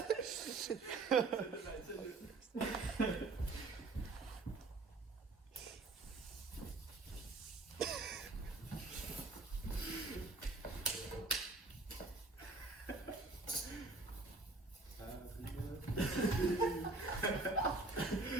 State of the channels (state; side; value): quieter; left; 3.4 dB